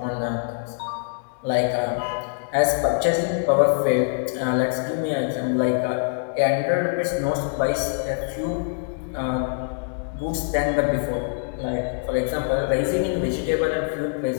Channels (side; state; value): right; silent; digital silence